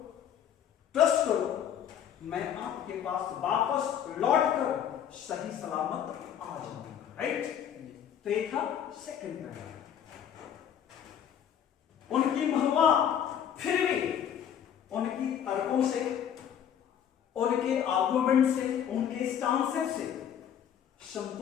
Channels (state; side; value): quieter; right; 9.2 dB